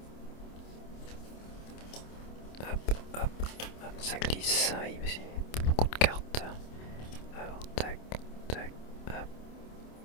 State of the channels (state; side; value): late; right; 27 ms